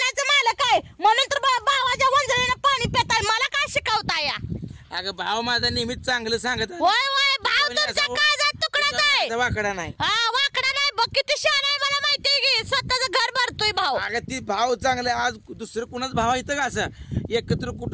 मालक आहे म्हणून तर भावाच्या वंजळीनं पाणी पिताय. मला काय शिकवताय? अगं भाव माझा नेहमीच चांगलं सांगत. होय भाव तुमचा काळजात तुकडाच आहे. वाकडा नाही. वाकडा नाही. बघ किती शहाणा आहे. मला माहितीये की स्वतःच घर भरतोय भाव. अगं ती भाव चांगलं. आज दुसरं कुणाच भाव येतं का? असं एकत्र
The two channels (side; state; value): both; identical; correlation 1.00